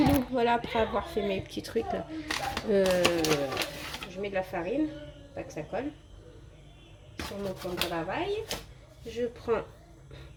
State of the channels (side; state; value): both; identical; correlation 1.00